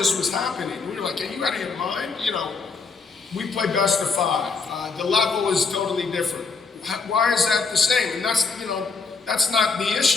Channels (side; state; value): right; quieter; 4.7 dB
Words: was happening. We were like, are you out of your mind? You know, we play best of 5. The level is totally different. Why is that the same? And that's, you know, that's not the